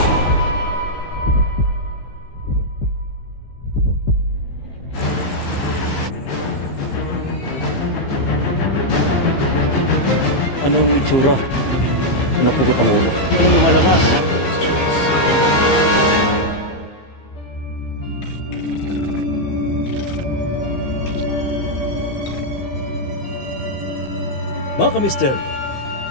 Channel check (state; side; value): late; right; 15 ms